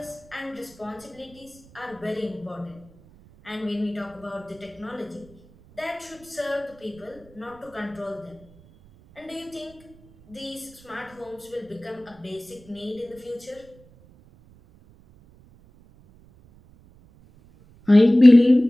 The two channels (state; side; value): noise; right; rumble, 26 dB below the sound